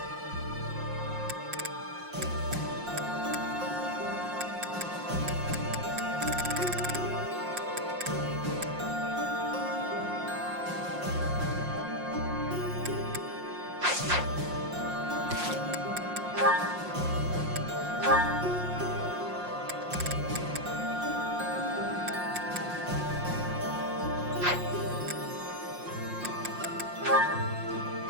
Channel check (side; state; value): left; late; 5.6 ms